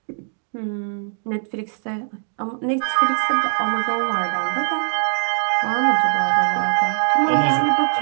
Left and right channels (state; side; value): silent; left; digital silence